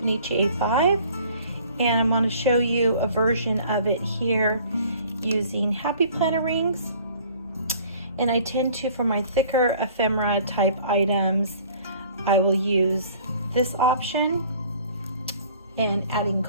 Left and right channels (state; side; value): inverted; both; correlation -0.52